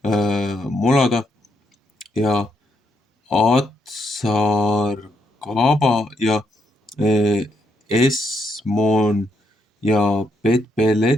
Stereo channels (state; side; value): normal; both; correlation 0.77